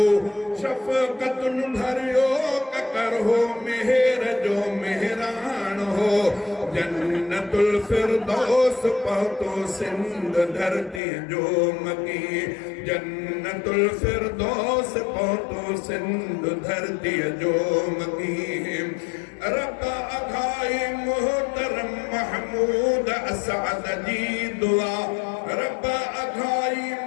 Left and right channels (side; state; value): right; drops out; at 11.0 s